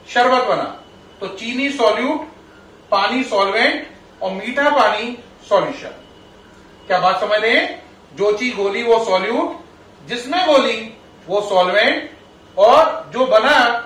शरबत बना, तो चीनी सॉल्यूट, पानी सॉल्वेंट और मीठा पानी सॉल्यूशन। क्या बात समझ रहे हैं? जो चीज घोली वो सॉल्यूट, जिसमें घोली वो सॉल्वेंट, और जो बना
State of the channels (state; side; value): identical; both; correlation 1.00